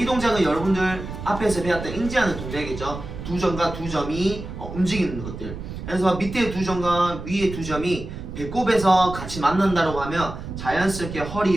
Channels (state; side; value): noise; right; rumble, 9 dB below the sound